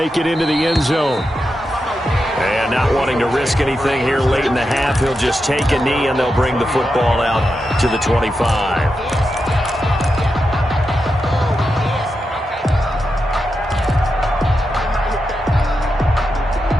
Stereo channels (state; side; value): normal; both; correlation 0.88